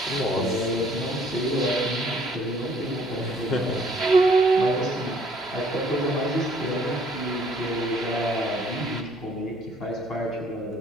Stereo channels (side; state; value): both; normal; correlation 0.61